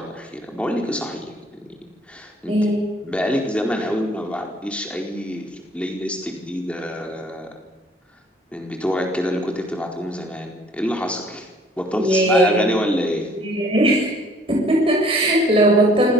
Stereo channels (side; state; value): both; normal; correlation 0.57